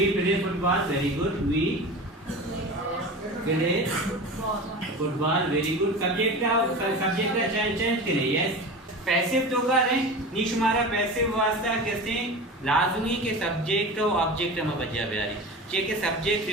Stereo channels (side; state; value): both; normal; correlation 0.31